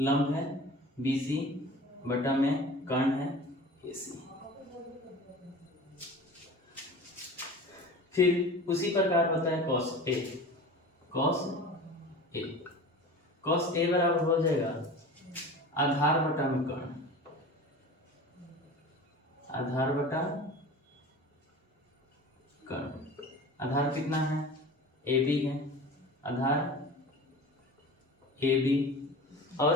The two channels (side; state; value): both; normal; correlation 0.37